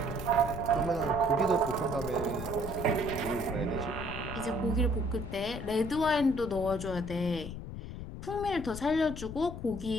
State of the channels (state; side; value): noise; left; rumble, 9 dB below the sound